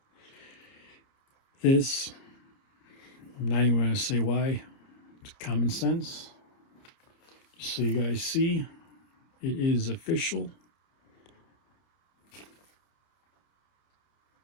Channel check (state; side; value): late; right; 30 ms